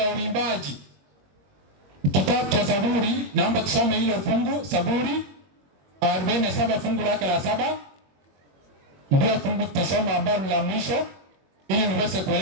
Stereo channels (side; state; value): left; late; 21 ms